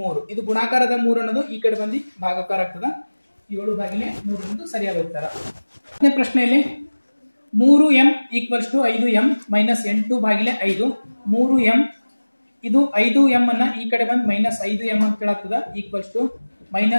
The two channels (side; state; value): both; inverted; correlation -1.00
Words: ಇದು ಗುಣಾಕಾರದ 3 ಅನ್ನೋದು ಈ ಕಡೆ ಬಂದು ಭಾಗಾಕಾರ ಆಗ್ತದ. 7 ಭಾಗಿಲೆ 3 ಅನ್ನೋದು ಸರಿಯಾದ ಉತ್ತರ. 10ನೇ ಪ್ರಶ್ನೆಯಲ್ಲಿ 3m equals to 5m minus 8 ಭಾಗಿಲೆ 5. 3m ಇದು 5m ಅನ್ನ ಈ ಕಡೆ ಬಂದು ಮೈನಸ್ 5m ಅಂತ ಹೇಳಾಗ್ತದ. ಈಕ್ವಲ್ಸ್ ಟು